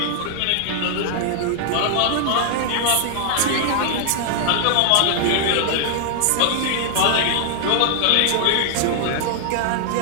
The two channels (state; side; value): different; both; correlation 0.00